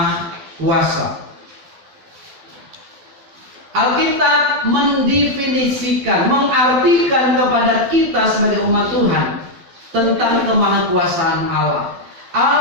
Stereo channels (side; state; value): left; late; 12 ms